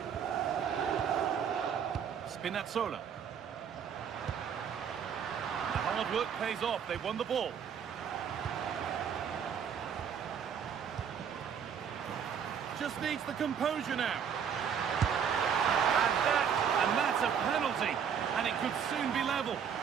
Spinazzola. The hard work pays off, they won the ball. Just needs the composure now. And that's a penalty. And it could soon be level.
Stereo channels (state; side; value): quieter; left; 7.6 dB